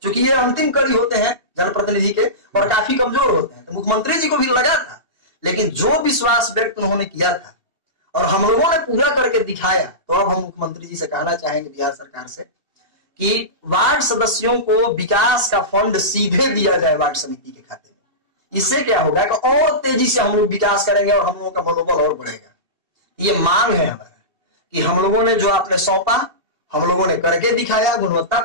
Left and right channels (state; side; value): late; left; 2.7 ms